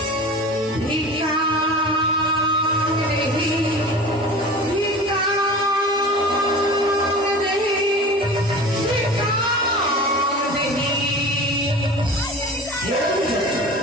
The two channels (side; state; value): both; normal; correlation 0.37